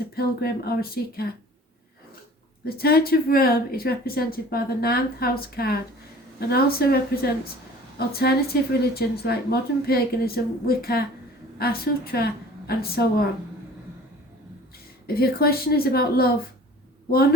a pilgrim or a seeker. The Church of Rome is represented by the 9th house card and also represents alternative religions like modern paganism, Wicca, Asutra and so on. If your question is about love,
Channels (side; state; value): both; normal; correlation 0.46